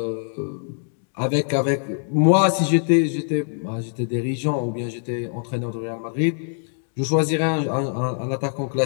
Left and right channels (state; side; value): silent; right; digital silence